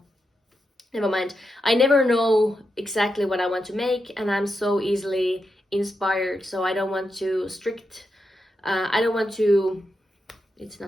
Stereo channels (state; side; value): normal; both; correlation 0.86